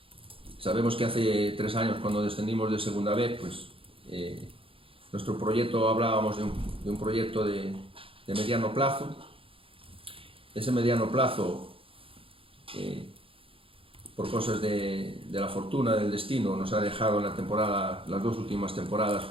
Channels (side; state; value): left; late; 0.26 ms